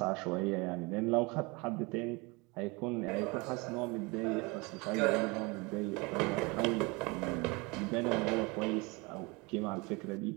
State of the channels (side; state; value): left; quieter; 26.7 dB